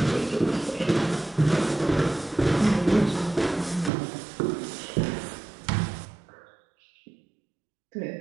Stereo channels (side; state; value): left; drops out; at 3.9 s